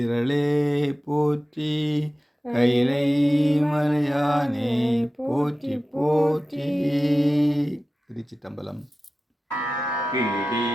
போற்றி, கைலை மலையானே போற்றி போற்றி. திருச்சிட்டம்பலம்.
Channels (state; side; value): normal; both; correlation 0.95